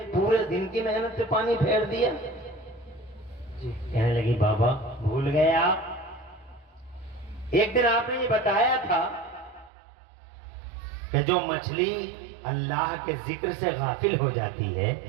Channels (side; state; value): left; drops out; at 9.7 s